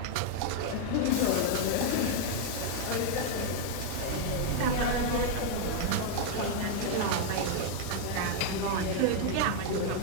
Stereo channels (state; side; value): different; both; correlation 0.00